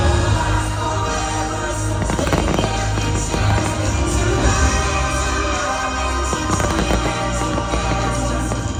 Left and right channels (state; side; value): identical; both; correlation 1.00